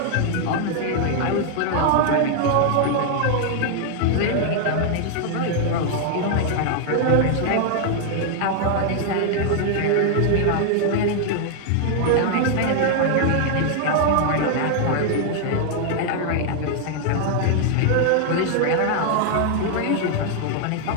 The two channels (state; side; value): different; both; correlation 0.00